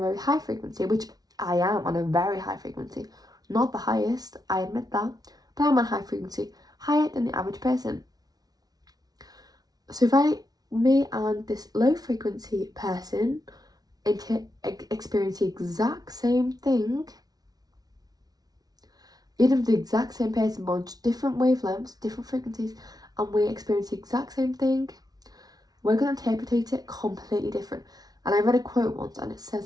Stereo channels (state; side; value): late; left; 0.19 ms